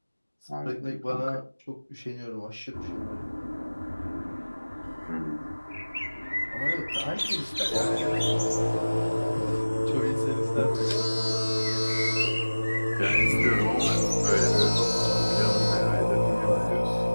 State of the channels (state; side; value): inverted; both; correlation -1.00